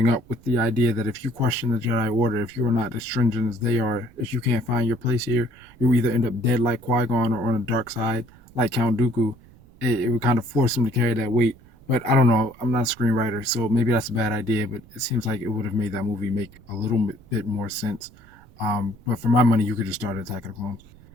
up with the idea that if you question the Jedi Order, if you are not as stringent as they are, if you can't find your place here, you'll either end up dead like Qui-Gon or on the dark side like Count Dooku. It would kind of force him to carry that weight. But I don't know. I'm not a screenwriter, so maybe that's a bad idea. But it seems like it would have made that movie make a little bit more sense. But for my money, you could just start Attack of the Clones.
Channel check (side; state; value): right; noise; rumble, 24 dB below the sound